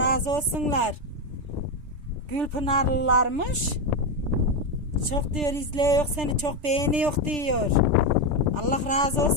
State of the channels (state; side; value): late; left; 3.4 ms